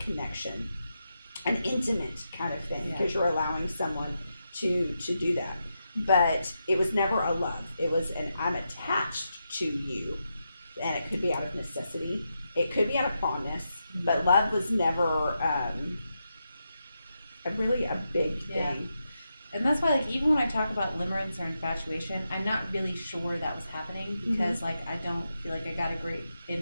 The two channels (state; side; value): inverted; both; correlation -0.86